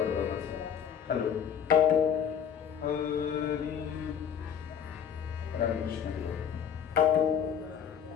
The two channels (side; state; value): right; quieter; 8.1 dB